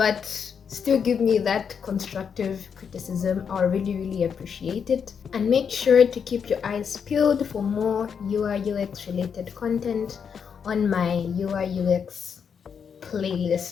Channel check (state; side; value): quieter; right; 6.9 dB